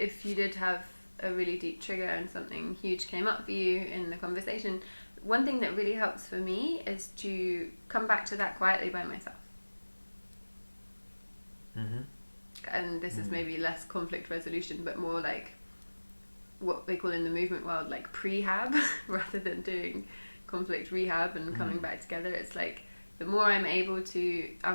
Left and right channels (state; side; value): inverted; both; correlation -1.00